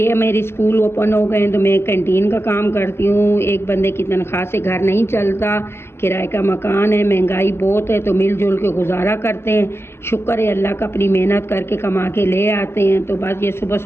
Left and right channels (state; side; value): late; right; 0.12 ms